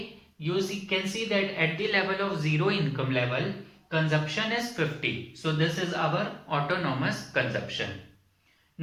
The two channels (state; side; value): identical; both; correlation 1.00